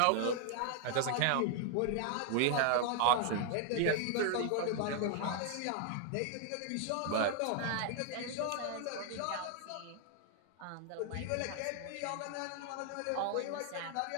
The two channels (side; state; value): both; different; correlation 0.00